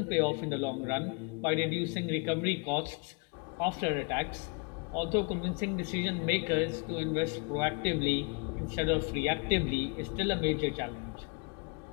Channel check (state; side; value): quieter; right; 32.5 dB